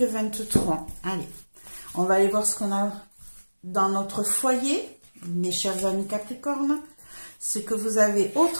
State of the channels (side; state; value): both; inverted; correlation -1.00